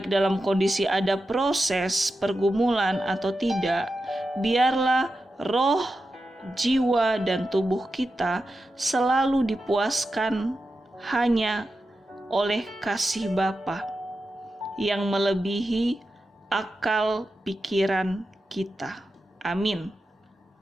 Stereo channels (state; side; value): normal; both; correlation 0.90